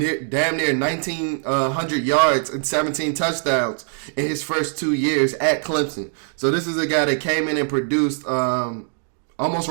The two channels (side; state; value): left; silent; 57 dB below the other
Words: damn near 1,900 yards and 17 touchdowns in his first 2 years at Clemson. So this is a guy that came in and produced almost